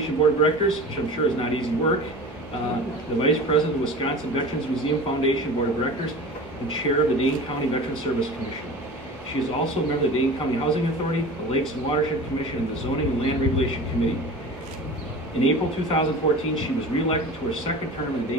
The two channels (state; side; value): normal; both; correlation 0.36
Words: Board of Directors, which I'm sure is not easy work. the Vice President of the Wisconsin Veterans Museum Foundation Board of Directors and Chair of the Dane County Veterans Service Commission. She is also a member of the Dane County Housing Authority, the Lakes and Watershed Commission, and the Zoning and Land Regulation Committee. In April 2014, she was reelected to her second term in the